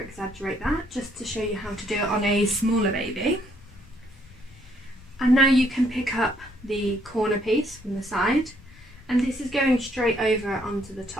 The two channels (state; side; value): noise; left; rumble, 21 dB below the sound